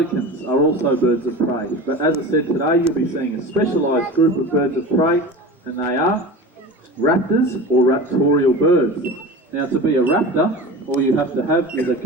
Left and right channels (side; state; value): both; normal; correlation 0.33